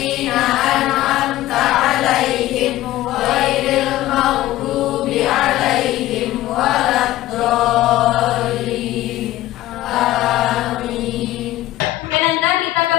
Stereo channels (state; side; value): quieter; right; 15.5 dB